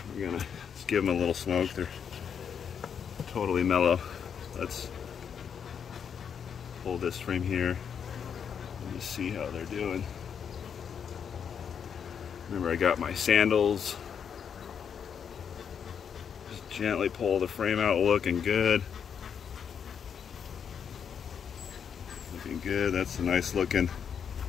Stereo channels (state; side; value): quieter; right; 7.4 dB